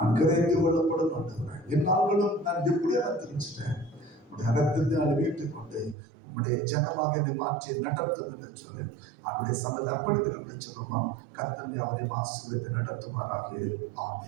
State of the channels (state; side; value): drops out; left; at 6.0 s